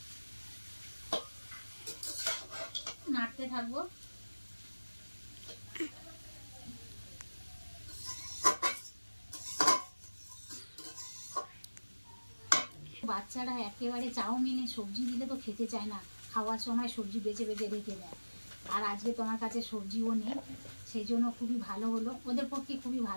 নাড়তে থাকবো। বাচ্চারা একেবারে চাউমিনে সবজি দিলে তো খেতে চায় না, খাওয়ার সময় সবজি বেছে বেছে রেখে দেয়। আর আজকে তোমার কাছে সবজিও নেই, সেই জন্য খুবই ভালো হলো, ওদের পক্ষে খুবই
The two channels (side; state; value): both; inverted; correlation -1.00